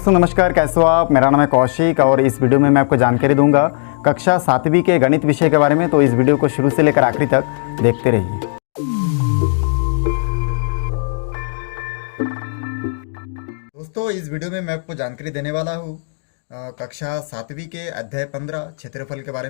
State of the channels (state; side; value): silent; right; digital silence